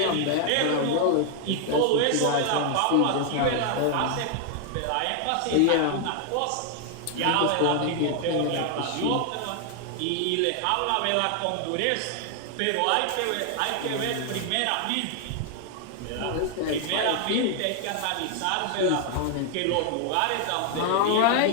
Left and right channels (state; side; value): different; both; correlation 0.00